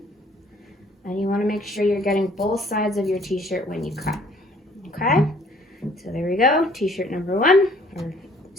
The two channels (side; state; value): both; normal; correlation 0.58